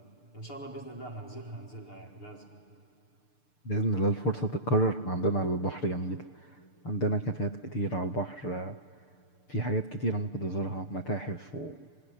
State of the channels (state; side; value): late; right; 6.8 ms